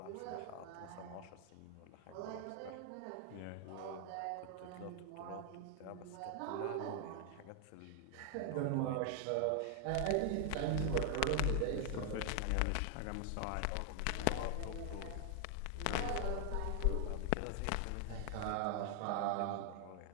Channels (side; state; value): both; different; correlation 0.00